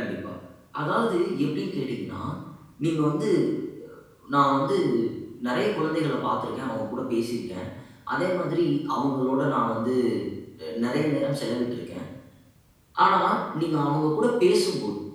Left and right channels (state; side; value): identical; both; correlation 1.00